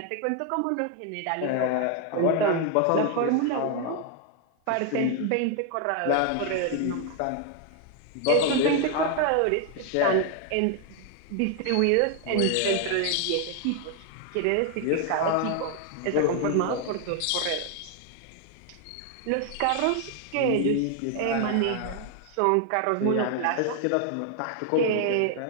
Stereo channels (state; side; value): different; both; correlation 0.01